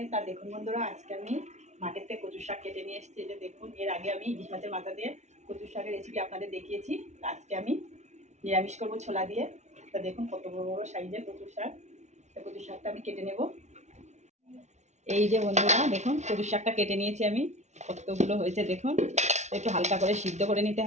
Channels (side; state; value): left; late; 0.33 ms